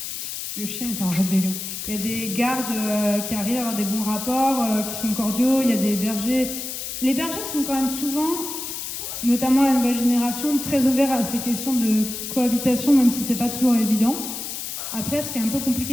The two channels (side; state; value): left; noise; hiss, 6 dB below the sound